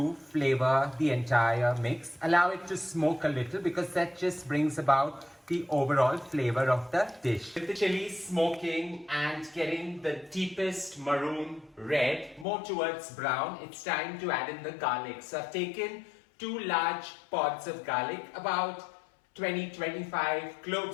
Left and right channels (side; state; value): right; drops out; at 12.5 s